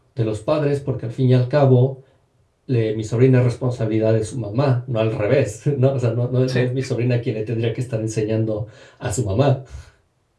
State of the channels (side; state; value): both; identical; correlation 1.00